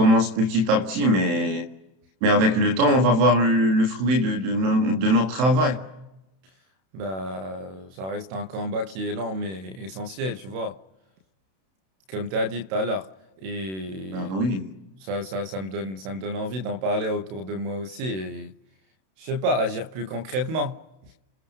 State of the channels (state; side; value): late; left; 32 ms